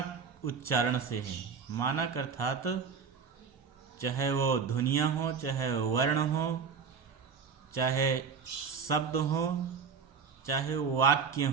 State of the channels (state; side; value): quieter; left; 5.9 dB